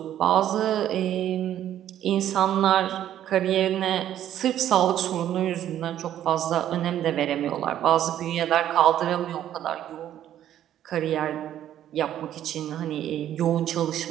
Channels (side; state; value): left; quieter; 11.4 dB